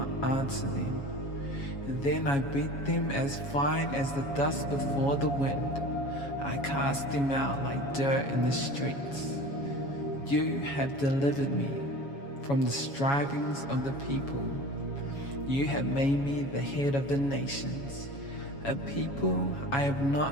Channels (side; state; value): right; late; 7.2 ms